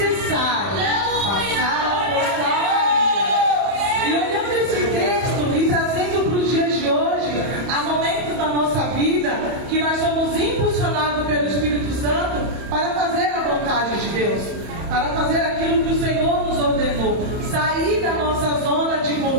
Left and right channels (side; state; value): left; late; 31 ms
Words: passar por Samaria. E olhando esse texto e trazendo para os dias de hoje, há momentos na nossa vida que nós somos impulsionados pelo Espírito Santo para fazer a vontade de Deus, para fazer aquilo que o Senhor nos ordenou, sair da nossa zona de